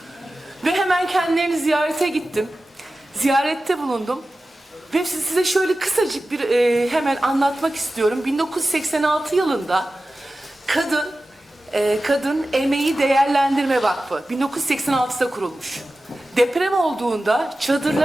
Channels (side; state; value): both; normal; correlation 0.95